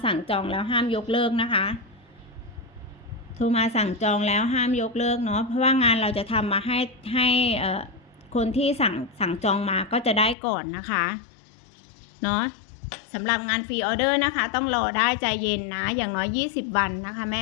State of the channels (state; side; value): drops out; right; at 10.4 s